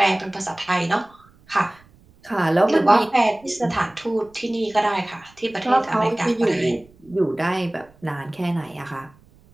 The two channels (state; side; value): noise; right; rumble, 29 dB below the sound